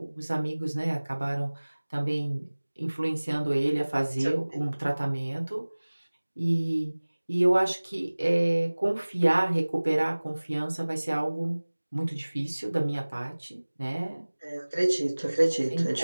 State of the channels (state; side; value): inverted; both; correlation -1.00